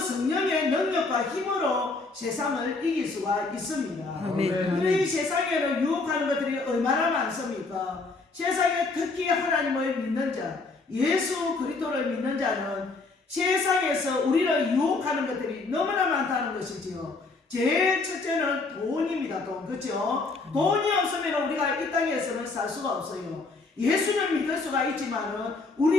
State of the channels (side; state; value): right; quieter; 3.7 dB